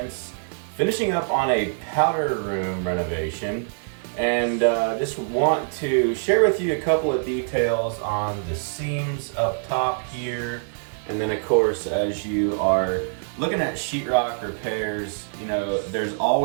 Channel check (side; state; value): left; silent; digital silence